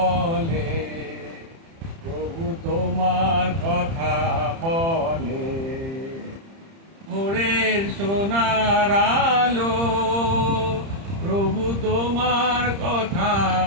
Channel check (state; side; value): late; left; 30 ms